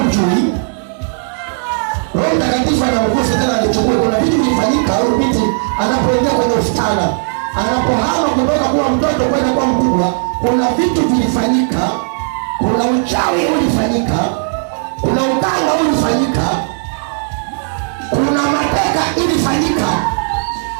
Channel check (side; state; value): left; silent; digital silence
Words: Roho Mtakatifu anaongoza tena alichukua. Kuna vitu vilifanyika huyo binti anapoingia kwenye usitana, anapohama kutoka kuwa mtoto kwenda kuwa mkubwa. Kuna vitu vilifanyika. Kuna uchawi ulifanyika, kuna uganga ulifanyika, kuna mateka ilifanyika.